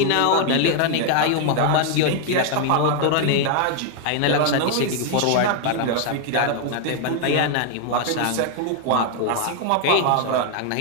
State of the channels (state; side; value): different; both; correlation 0.00